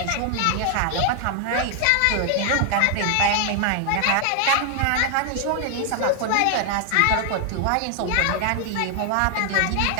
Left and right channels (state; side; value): different; both; correlation 0.00